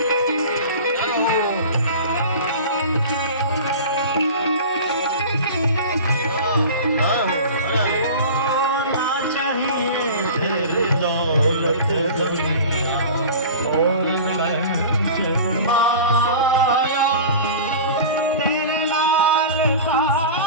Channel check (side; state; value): both; inverted; correlation -0.35